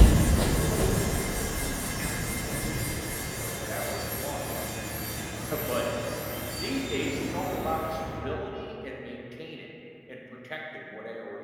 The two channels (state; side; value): identical; both; correlation 1.00